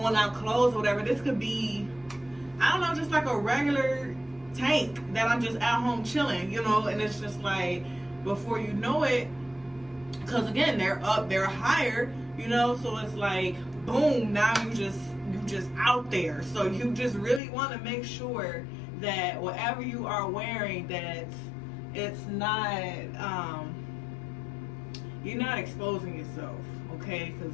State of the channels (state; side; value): drops out; right; at 17.4 s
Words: out clothes or whatever. This could be, I don't know, just like a regular tank that I'm just at home chilling, you know, and it's just like, before you know it, because again, they're up, they're higher, you know, so it's like boom, now you just out there. So you just really want to make sure that whatever you are wearing, that it's not you're not exposing yourself, okay?